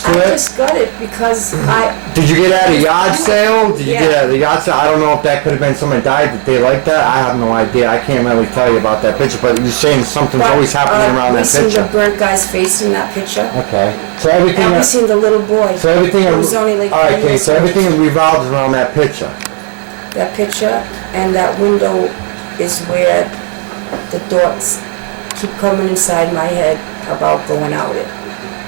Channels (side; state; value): left; quieter; 37.8 dB